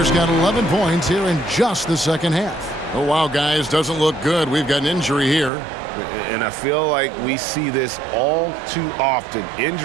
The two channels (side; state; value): left; drops out; at 5.5 s